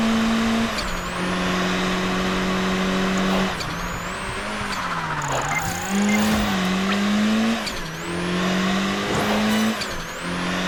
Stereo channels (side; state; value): both; identical; correlation 1.00